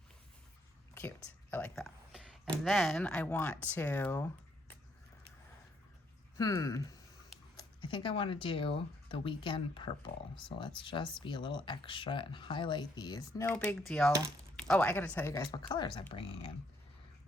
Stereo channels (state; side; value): normal; both; correlation 0.70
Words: Cute, I like that. And then I want to, I think I wanna do the weekend purple. So let's just be a little extra and highlight these. No big deal. Oh, I gotta tell you guys what colors I'm bringing in.